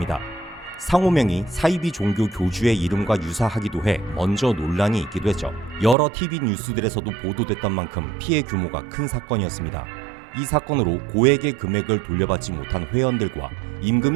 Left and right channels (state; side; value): drops out; left; at 6.0 s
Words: 상호명이 사이비 종교 교주의 이름과 유사하기도 해 먼저 논란이 있기도 했죠. 여러 TV 뉴스들에서도 보도됐던 만큼 피해 규모가 큰 사건이었습니다. 이 사건으로 고액의 금액을 돌려받지 못한 회원들과